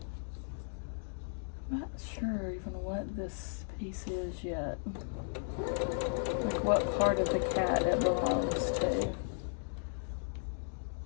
Not sure even what this piece is yet. Like what part of the cat it belongs to.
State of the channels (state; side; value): silent; right; digital silence